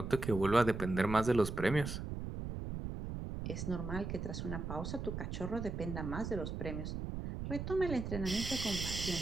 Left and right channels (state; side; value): noise; right; rumble, 5 dB below the sound